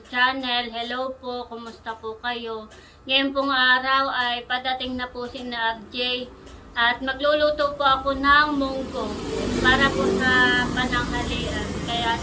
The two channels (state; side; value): identical; both; correlation 1.00